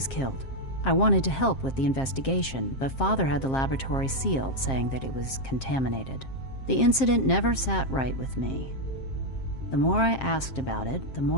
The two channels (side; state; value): right; late; 7.5 ms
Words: killed. I wanted to help with the investigation, but Father had the laboratory sealed, saying that it was contaminated. The incident never sat right with me. The more I asked about it, the